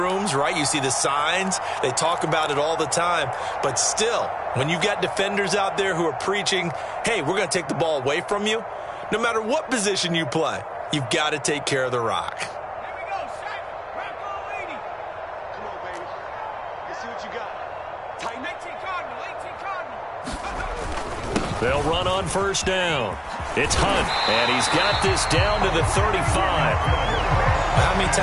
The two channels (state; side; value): identical; both; correlation 1.00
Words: right? You see the signs. They talk about it all the time. But still, when you've got defenders out there who are preaching, hey, we're going to take the ball away from you, no matter what position you play, you've got to take care of the rock. Here we go, Shaq. Rock ball 80. Come on, baby. Let's see what you got. Tighten 18 Cardinal. They'll run on first down. It's Hunt, and he's got this down to the 35. How many